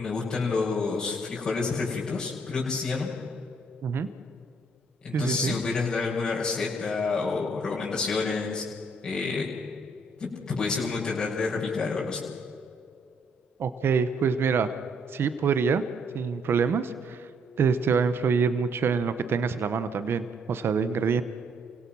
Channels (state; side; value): normal; both; correlation 0.68